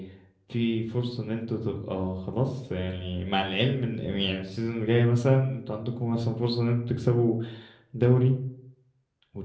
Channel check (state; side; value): identical; both; correlation 1.00